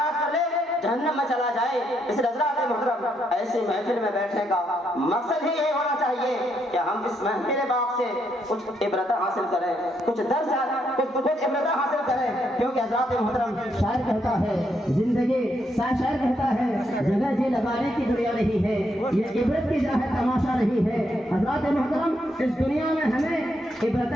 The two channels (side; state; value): both; normal; correlation 0.77